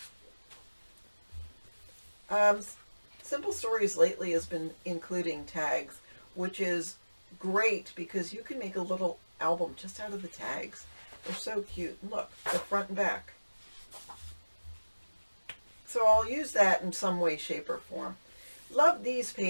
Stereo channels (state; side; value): inverted; both; correlation -1.00